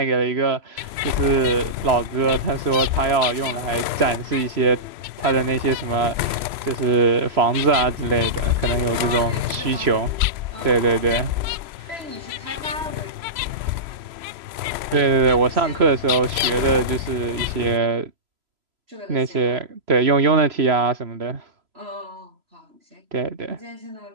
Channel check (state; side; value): late; left; 3.0 ms